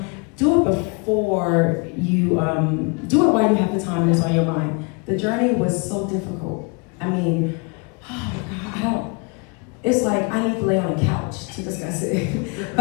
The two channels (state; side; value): quieter; right; 31.3 dB